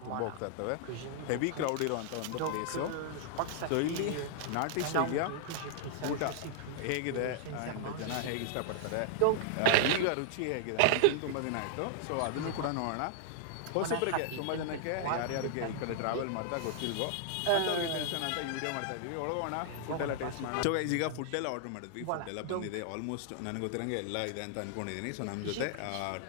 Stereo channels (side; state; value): both; different; correlation -0.01